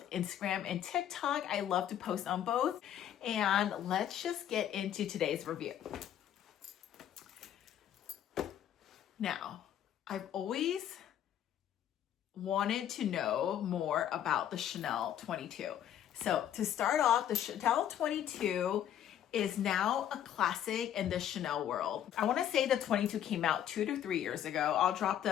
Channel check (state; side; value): quieter; right; 10.5 dB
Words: Instagram and TikTok, I love to post on both. And let's just get into today's review. Now, I've always wanted to know more about the Chanel 22. So to start off, the Chanel 22 is now a classic in the Chanel world. I want to say the 22 came out 2 to 3 years ago. I'll drop